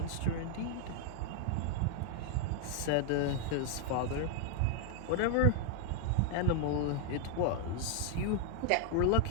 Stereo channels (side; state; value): both; different; correlation 0.00